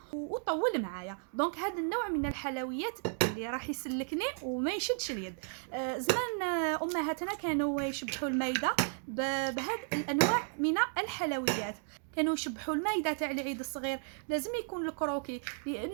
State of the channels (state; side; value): silent; left; 55 dB below the other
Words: وطول معايا. دونك هذا النوع من الحلويات اللي راح يسلكني وما يشدش اليد. زمان امهاتنا كانوا يشبحوا المايده بهذه الانواع من الحلويات. كانوا يشبحوا المايده تاع العيد الصغير لازم يكون الكروكي،